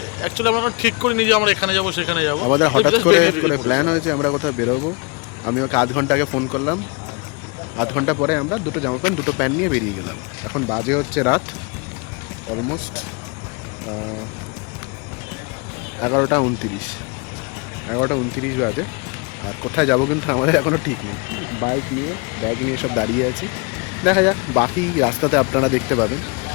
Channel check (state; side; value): quieter; right; 31.5 dB